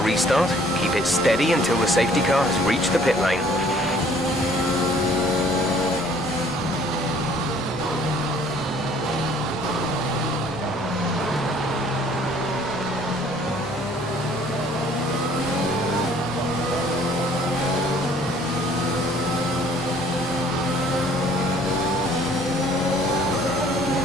restart. Keep it steady until the safety car has reached the pit lane.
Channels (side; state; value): both; normal; correlation 0.57